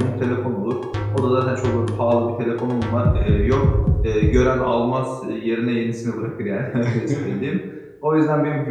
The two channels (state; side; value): identical; both; correlation 1.00